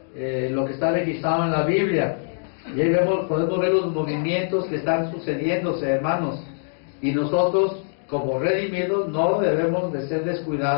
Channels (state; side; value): silent; right; digital silence